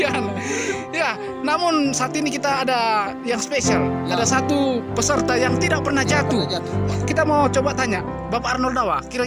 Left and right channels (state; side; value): identical; both; correlation 1.00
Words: Ya, namun saat ini kita ada yang spesial. Ya. Ada satu peserta yang tidak pernah jatuh. Jatuh. Kita mau coba tanya, Bapak Arnold Dawa,